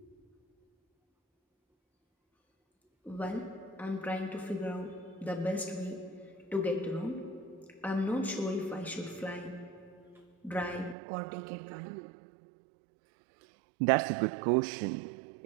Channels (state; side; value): drops out; left; at 11.0 s